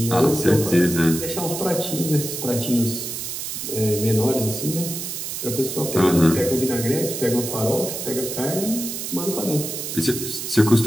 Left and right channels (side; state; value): right; noise; hiss, 5 dB below the sound